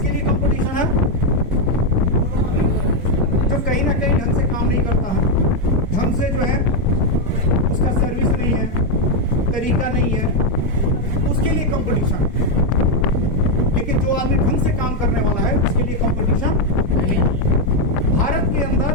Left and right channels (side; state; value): both; normal; correlation 0.03